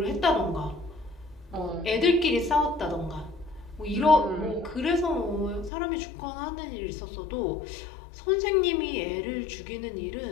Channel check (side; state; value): right; drops out; at 5.7 s